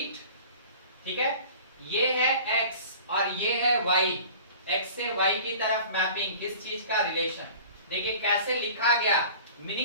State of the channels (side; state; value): both; inverted; correlation -0.43